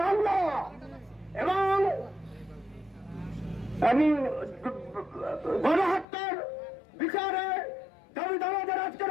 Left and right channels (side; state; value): right; drops out; at 6.1 s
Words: এবং আমি গণহত্যার বিচারে দাবিদারদের আজকের